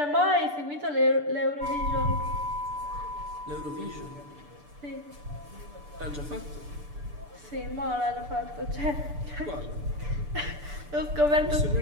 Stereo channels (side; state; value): left; late; 6.8 ms